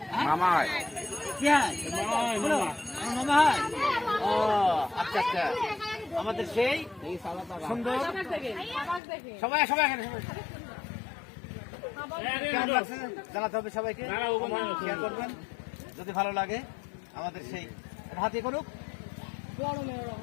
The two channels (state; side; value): drops out; right; at 9.0 s